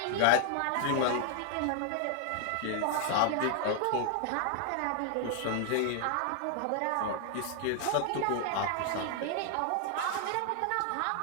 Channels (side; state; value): both; different; correlation 0.00